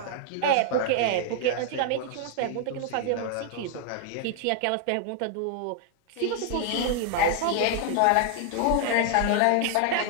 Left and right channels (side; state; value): both; different; correlation 0.00